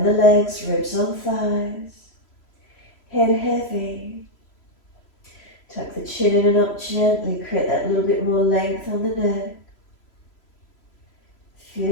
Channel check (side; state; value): right; late; 3.0 ms